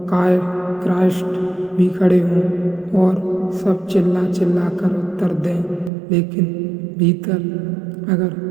क्राइस्ट भी खड़े हों, और सब चिल्ला चिल्ला कर उत्तर दें, लेकिन भीतर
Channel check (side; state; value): left; drops out; at 5.9 s